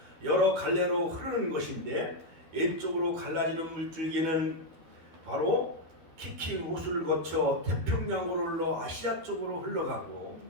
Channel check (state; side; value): late; left; 12 ms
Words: 여러 갈래로 흐르는 것인데, 왼쪽으로 갈라지는 물줄기는 바로 키킹 호수를 거쳐 태평양으로 흘러 아시아 쪽으로 흘러가고,